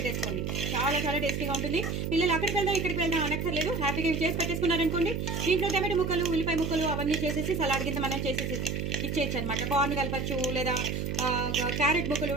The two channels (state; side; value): noise; right; hum, 2 dB below the sound